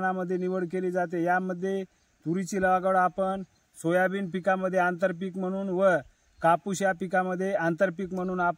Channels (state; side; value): identical; both; correlation 1.00